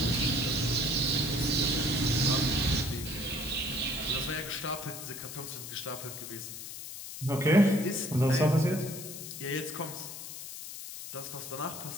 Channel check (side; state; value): left; noise; hiss, 10 dB below the sound